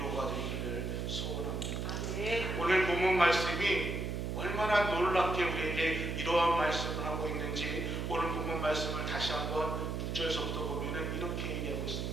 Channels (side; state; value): right; noise; hum, 2 dB below the sound